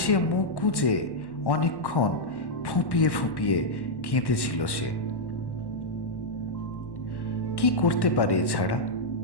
মুখ গুজে অনেকক্ষণ ফুঁপিয়ে ফুঁপিয়ে কেঁদেছিল সে। কি করতে পারে এছাড়া?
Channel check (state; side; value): late; right; 1.1 ms